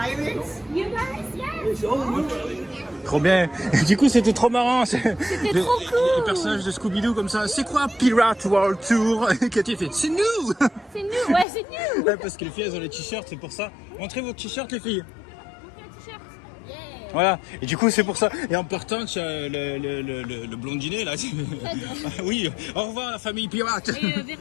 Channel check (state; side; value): drops out; right; at 11.5 s